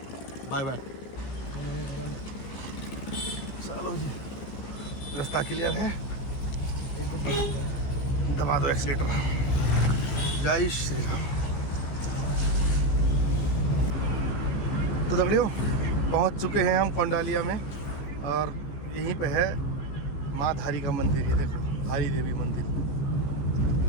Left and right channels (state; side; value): late; right; 15 ms